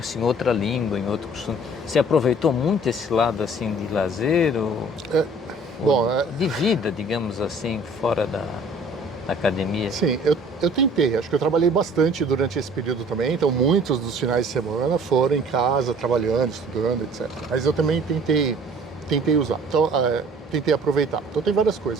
em outra língua, em outro costume. Você aproveitou muito esse lado, assim, de lazer ou Bom, de vida, digamos assim, fora da academia? sim, eu tentei. Acho que eu trabalhei bastante durante esse período também. Então, muitos dos finais de semana foram em casa, trabalhando, estudando, etc. Mas eu também tentei usar. Então, tentei aproveitar. Então, tem várias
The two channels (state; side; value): normal; both; correlation 0.52